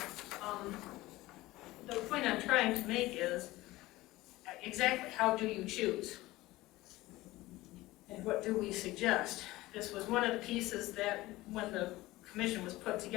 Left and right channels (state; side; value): quieter; right; 18.5 dB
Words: The point I'm trying to make is exactly how do you choose? And what do we suggest? This was one of the pieces that when the commission was put